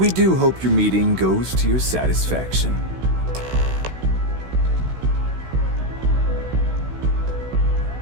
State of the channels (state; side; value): late; left; 16 ms